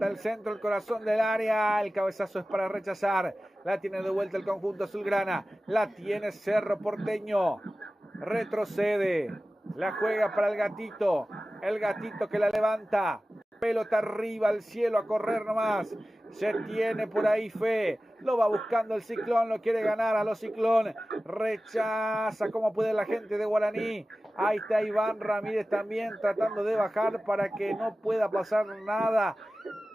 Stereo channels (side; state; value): both; normal; correlation 0.96